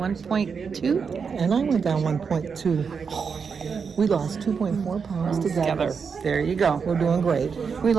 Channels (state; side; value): quieter; left; 5.9 dB